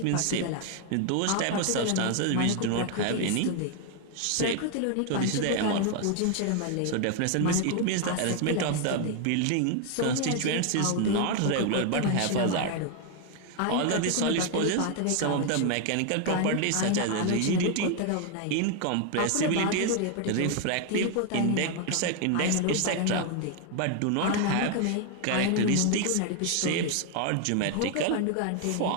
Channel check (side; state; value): both; different; correlation 0.01